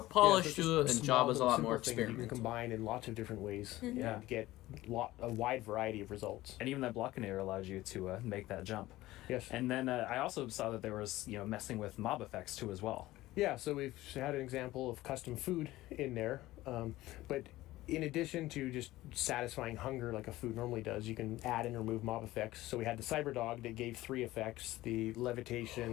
to it, and Java's a lot more experimental. You can combine in lots of different ways. Yeah, get a wide variety of results. And even that Blockinator allows you to make that jump. Yes. And then I also saw that there was messing with mob effects too as well. Yeah, so we've had an example of custom food in there, but in addition to just satisfying hunger like a food normally does, you can add and remove mob effects. So we had the Cyberdog that gave 3 effects: the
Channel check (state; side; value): quieter; right; 17.0 dB